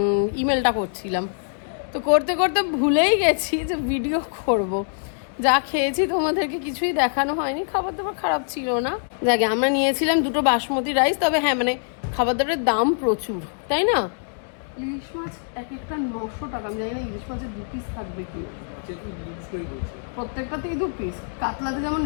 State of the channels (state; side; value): silent; right; digital silence